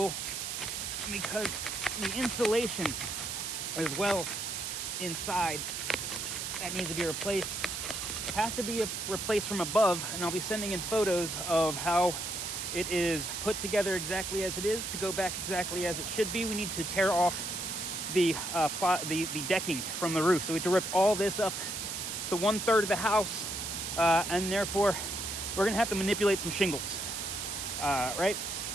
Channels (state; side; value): noise; right; hiss, 4 dB below the sound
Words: because the insulation as well inside that needs to be replaced has to be replaced from above, and I'll be sending in photos of how it is put together exactly as it is to go back exactly as it should be. We need to tear off the decking from the roof, so we have to rip all this up to 1/3 of the house, and therefore we're gonna have to manipulate some shingles, right?